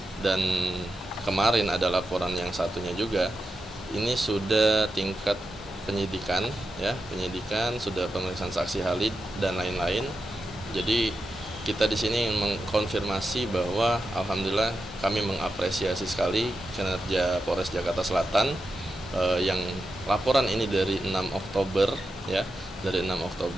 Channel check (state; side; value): normal; both; correlation 0.89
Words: dan kemarin ada laporan yang satunya juga, ini sudah tingkat penyidikan ya, penyidikan sudah pemeriksaan saksi ahli dan lain-lain. Jadi kita di sini mengkonfirmasi bahwa alhamdulillah kami mengapresiasi sekali kinerja Polres Jakarta Selatan yang laporan ini dari 6 Oktober ya, dari 6